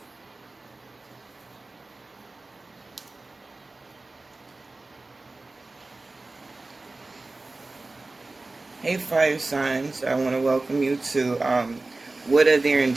Hey fire signs, I want to welcome you to what are their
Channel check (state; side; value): quieter; left; 3.2 dB